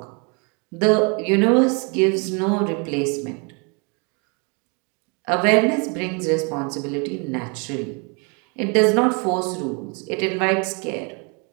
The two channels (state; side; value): quieter; left; 33.2 dB